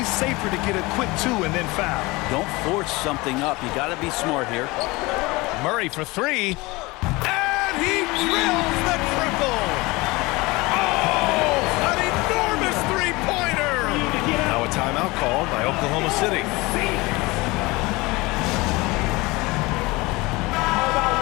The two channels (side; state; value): right; quieter; 22.9 dB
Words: safer to get a quick 2 and then foul. Don't force something up. You got to be smart here. Murray for 3. And he drills the triple. Oh, an enormous three-pointer. Now a timeout called by Oklahoma City. How about